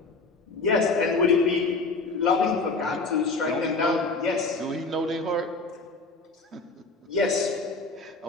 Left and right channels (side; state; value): right; quieter; 3.6 dB